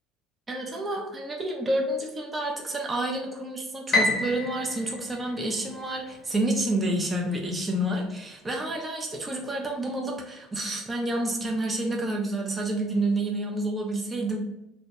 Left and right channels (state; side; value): normal; both; correlation 0.64